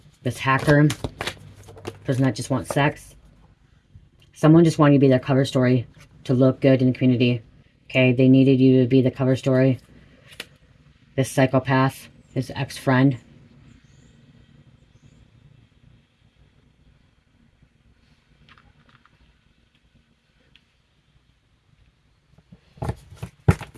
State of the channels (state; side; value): identical; both; correlation 1.00